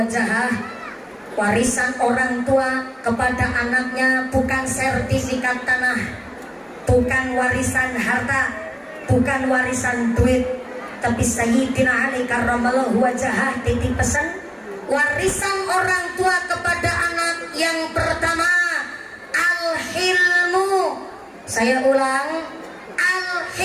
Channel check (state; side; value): identical; both; correlation 1.00